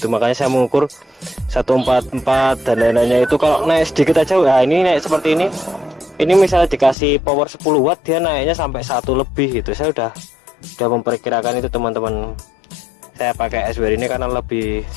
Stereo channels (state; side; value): drops out; right; at 7.0 s